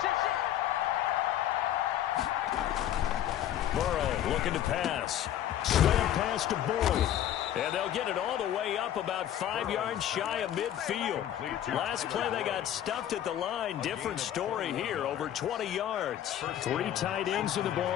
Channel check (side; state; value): right; quieter; 11.3 dB